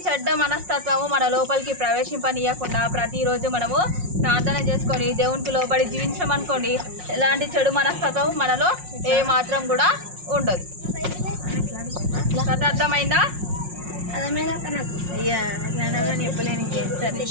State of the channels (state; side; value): late; left; 5.5 ms